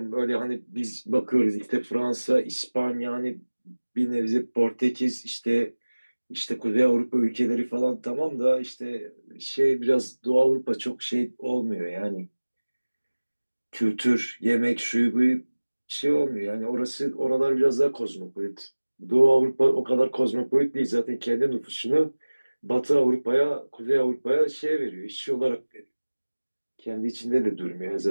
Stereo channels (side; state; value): both; inverted; correlation -1.00